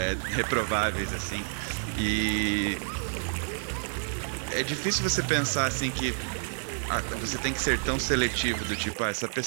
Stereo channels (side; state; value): left; silent; digital silence